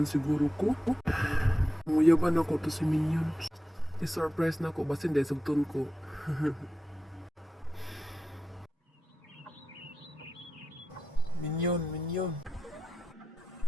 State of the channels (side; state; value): both; normal; correlation 0.91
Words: siguro ko. Muyaban ako to si Minion. I-surprise na ako, basin dahil sugton ko. Minion.